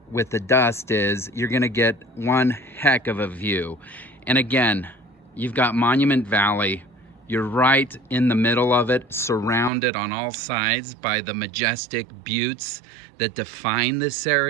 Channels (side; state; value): left; drops out; at 9.7 s